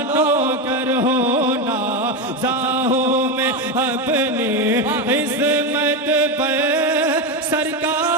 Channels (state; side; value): normal; both; correlation 0.13